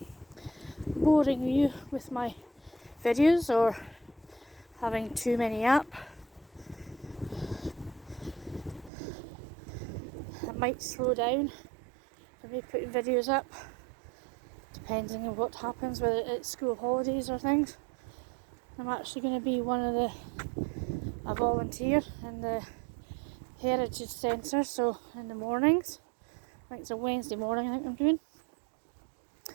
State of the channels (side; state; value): left; drops out; at 8.9 s